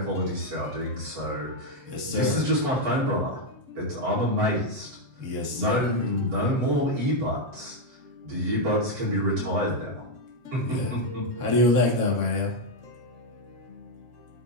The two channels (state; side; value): late; left; 8.0 ms